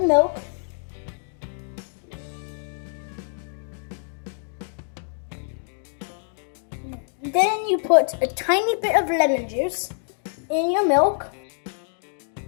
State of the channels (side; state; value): right; silent; digital silence